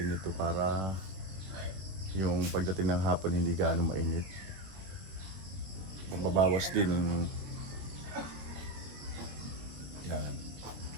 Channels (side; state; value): left; late; 21 ms